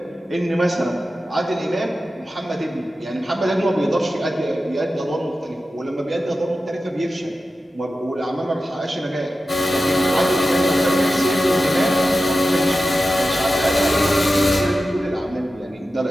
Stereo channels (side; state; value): both; normal; correlation 0.93